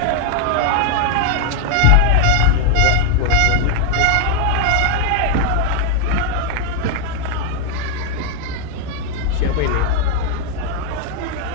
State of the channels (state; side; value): different; both; correlation 0.00